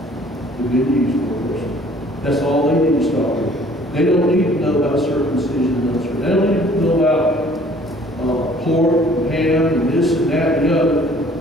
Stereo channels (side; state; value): both; normal; correlation 0.55